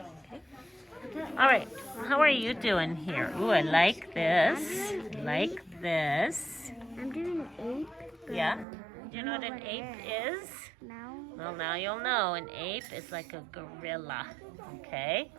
All right. How are you doing here? Ooh, I like this. Like this. I'm doing ape. Yeah. Do you know what an ape is? No. Well, now you'll know. An ape is like a gorilla, okay?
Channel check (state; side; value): drops out; left; at 8.7 s